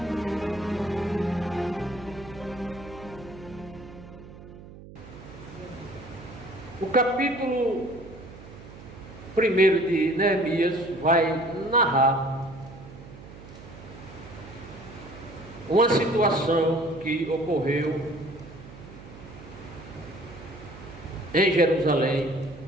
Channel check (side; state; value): right; noise; hum, 17 dB below the sound